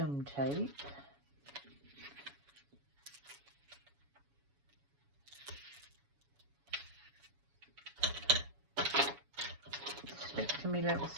tape. Stick to me little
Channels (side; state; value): left; late; 7.1 ms